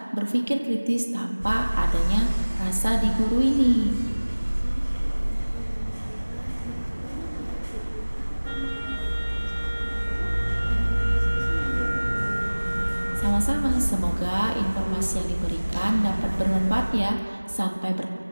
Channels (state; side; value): inverted; both; correlation -1.00